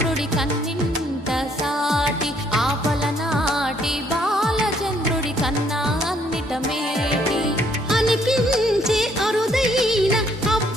కన్నింత సాటి, ఆ పలనాటి బాలచంద్రుడి కన్నా అన్నిట మేటి. అనిపించే అరుదైన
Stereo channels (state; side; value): normal; both; correlation 0.66